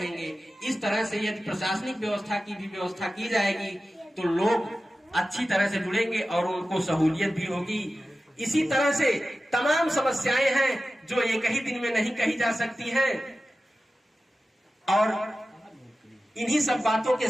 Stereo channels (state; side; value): normal; both; correlation 0.95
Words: इस तरह से यदि प्रशासनिक व्यवस्था की भी व्यवस्था की जाएगी तो लोग अच्छी तरह से जुड़ेंगे और उनको सहूलियत भी होगी। इसी तरह से तमाम समस्याएं हैं जो एक ही दिन में नहीं कही जा सकती हैं। और इन्हीं सब बातों के